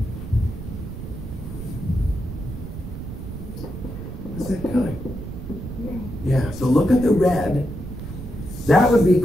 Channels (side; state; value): right; noise; rumble, 9 dB below the sound